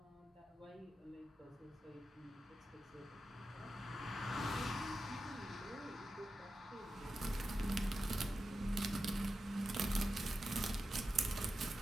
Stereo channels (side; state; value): both; normal; correlation 0.90